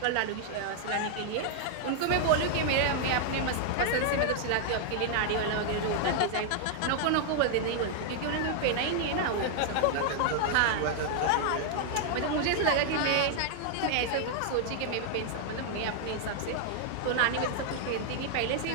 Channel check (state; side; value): different; both; correlation -0.01